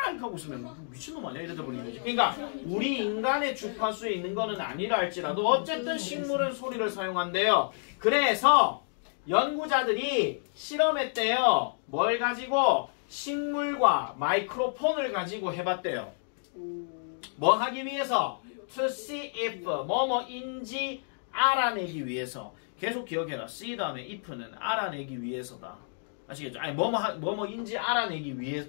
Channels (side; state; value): right; silent; digital silence